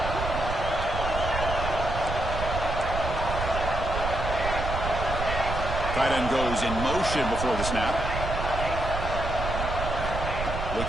Tight end goes in motion before the snap.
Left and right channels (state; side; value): noise; right; rumble, 4 dB below the sound